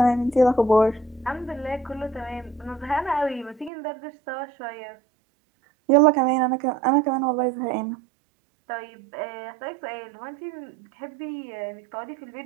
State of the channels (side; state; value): left; drops out; at 3.7 s